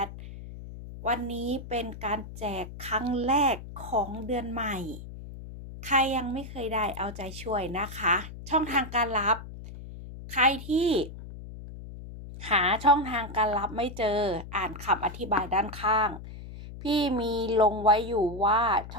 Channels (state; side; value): noise; left; hum, 12 dB below the sound